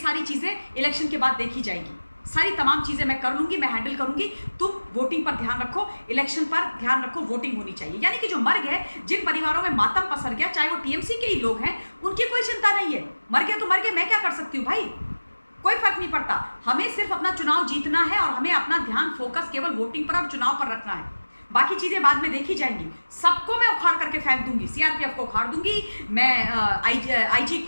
चीजें इलेक्शन के बाद देखी जाएगी, सारी तमाम चीजें मैं कर लूंगी, मैं हैंडल करूंगी। तुम वोटिंग पर ध्यान रखो, इलेक्शन पर ध्यान रखो, वोटिंग होनी चाहिए। यानी कि जो मर गए, जिन परिवारों में मातम पसर गया, चाहे वो टीएमसी के ही लोग हैं, उनकी कोई चिंता नहीं है। मर गए तो मर गए, मैं क्या कर सकती हूँ भाई, कोई फर्क नहीं पड़ता। हमें सिर्फ अपना चुनाव जीतना है और हमें अपना ध्यान फोकस केवल वोटिंग पर और चुनाव पर रखना है। बाकी चीजें बाद में देखी जाएंगी। सबको मैं उखाड़ करके फेंक दूंगी, सीआरपीएफ को उखाड़ दूंगी, मैं आईजी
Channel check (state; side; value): inverted; both; correlation -1.00